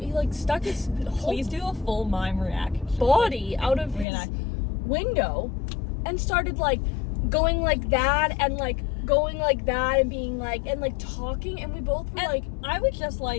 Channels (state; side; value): drops out; right; at 4.0 s